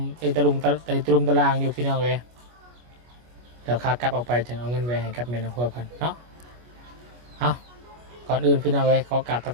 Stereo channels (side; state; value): left; late; 25 ms